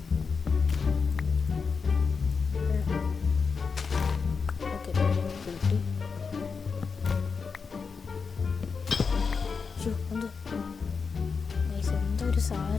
ഓക്കെ, കിട്ടി. എന്തോ ഒരു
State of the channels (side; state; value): right; quieter; 5.3 dB